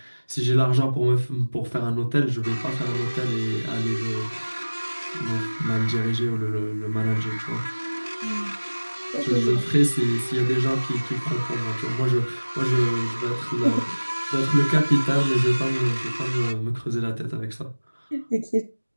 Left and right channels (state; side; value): inverted; both; correlation -1.00